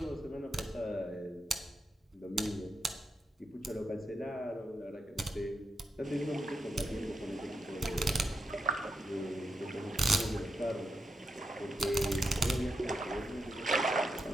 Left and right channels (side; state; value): both; normal; correlation 0.85